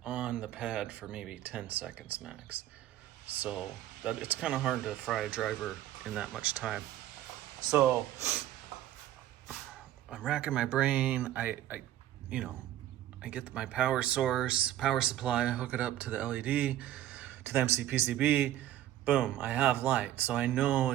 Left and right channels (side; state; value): left; quieter; 13.1 dB